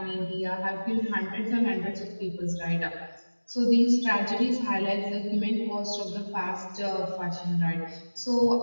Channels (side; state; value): both; inverted; correlation -1.00